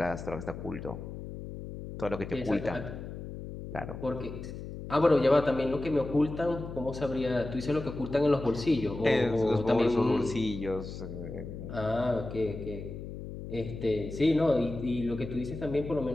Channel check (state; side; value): noise; left; hum, 9 dB below the sound